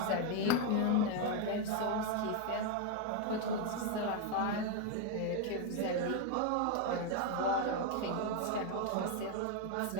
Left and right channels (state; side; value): different; both; correlation 0.01